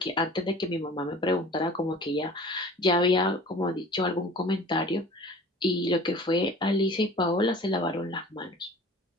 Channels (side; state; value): both; normal; correlation 0.44